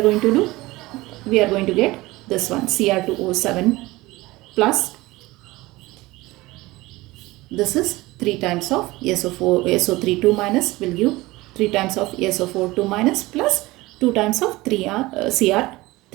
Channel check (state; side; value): quieter; left; 20.0 dB